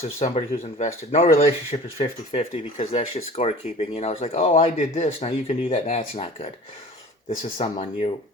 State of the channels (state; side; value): normal; both; correlation 0.42